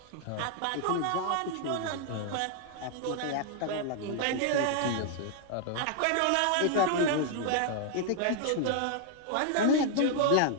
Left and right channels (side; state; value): both; different; correlation 0.00